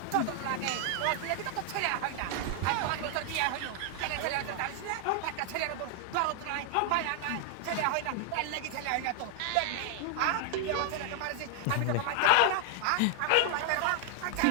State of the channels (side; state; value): both; different; correlation 0.00